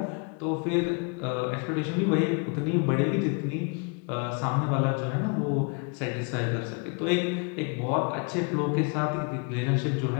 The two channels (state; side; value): quieter; right; 34.0 dB